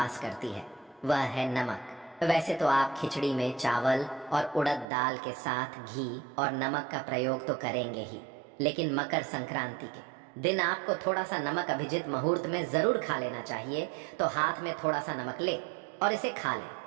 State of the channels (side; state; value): left; drops out; at 4.9 s